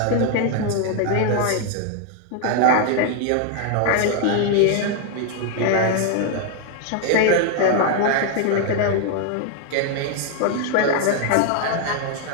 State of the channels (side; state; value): both; different; correlation 0.00